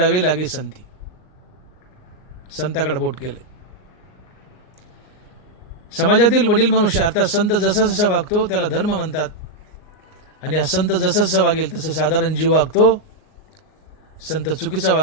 लागे संती. संताकडे बोट केले. समाजातील वडील मनुष्य अर्थात संत जसा जसा वागतो त्याला धर्म म्हणतात. आणि हा संत जसं जसं वागेल तसं साधारण जीव वागतो. संत चुकीचा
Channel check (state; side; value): late; right; 38 ms